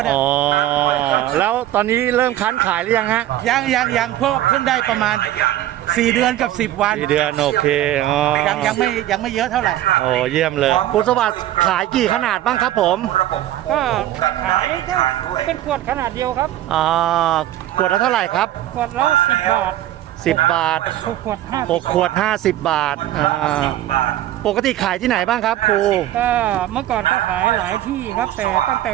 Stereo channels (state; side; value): quieter; left; 13.4 dB